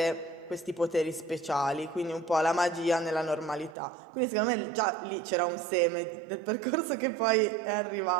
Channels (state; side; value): drops out; left; at 3.8 s